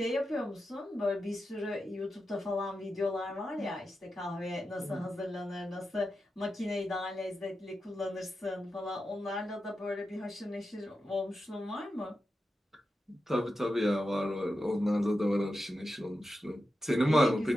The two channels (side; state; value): both; normal; correlation 0.90